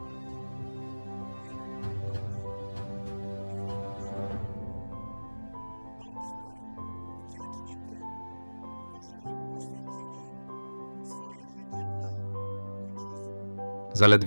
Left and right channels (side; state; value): both; inverted; correlation -1.00